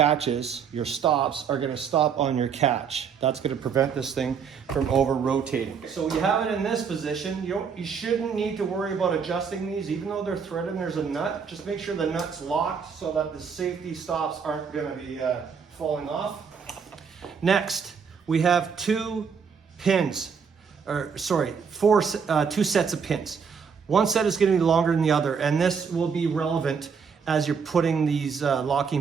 your stops are going to stop on your catch. That's going to prevent this thing from over rotating. So you have it in this position. You shouldn't need to worry about adjusting these, even though they're threaded and there's a nut. Just make sure the nut's locked so that the safety stops aren't going to be falling off. Next, we have two sets of pins. One set is going to be longer than the other, and this will be relevant as you're putting these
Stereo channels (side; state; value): left; quieter; 6.3 dB